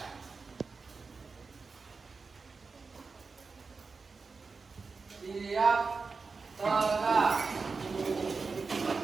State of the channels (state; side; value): quieter; left; 4.5 dB